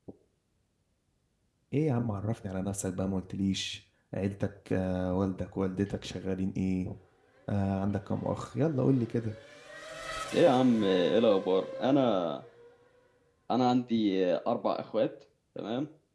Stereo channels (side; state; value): both; identical; correlation 1.00